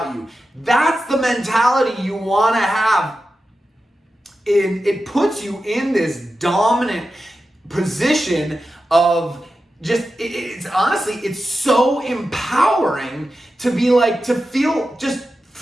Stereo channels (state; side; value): normal; both; correlation 0.92